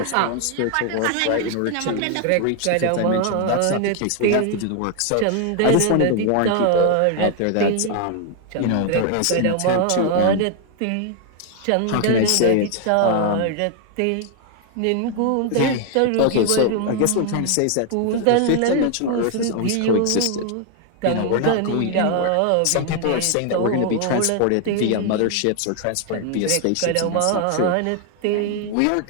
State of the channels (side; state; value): both; different; correlation 0.00